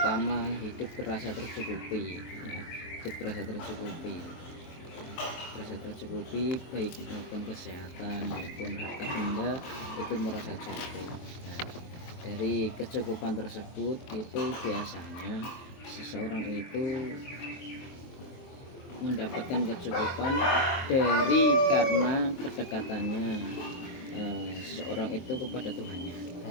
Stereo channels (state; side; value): late; right; 23 ms